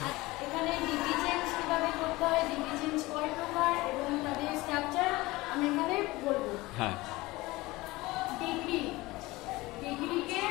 এখানে ডিগ্রি চেঞ্জ কিভাবে করতে হয়, ডিগ্রি চেঞ্জ কয় প্রকার এবং তাদের স্ট্রাকচার আমি এখানে বলবো। হ্যাঁ, ডিগ্রিকে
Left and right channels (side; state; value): right; quieter; 20.5 dB